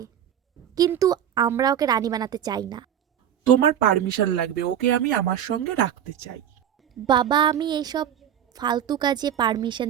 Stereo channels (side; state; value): left; quieter; 9.9 dB